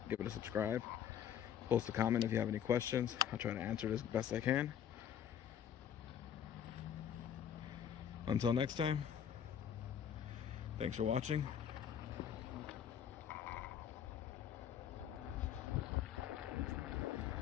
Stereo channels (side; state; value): right; quieter; 9.1 dB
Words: give it a subscribe, post a comment if you have any questions. I'll try to answer it as best I can. Until next time, thanks for watching.